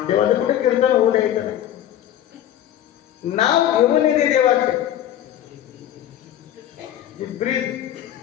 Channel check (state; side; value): quieter; right; 11.5 dB